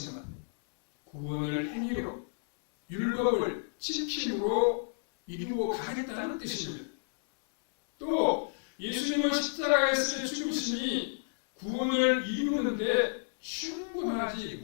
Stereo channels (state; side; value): silent; right; 57 dB below the other